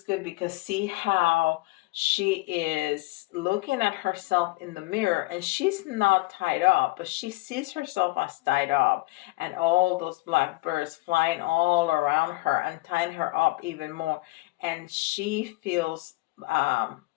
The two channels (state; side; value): quieter; right; 22.0 dB